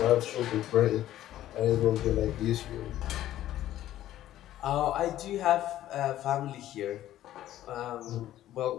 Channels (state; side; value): quieter; right; 13.3 dB